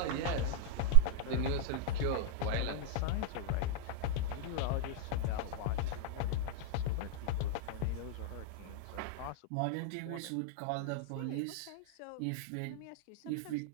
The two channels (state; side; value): different; both; correlation -0.01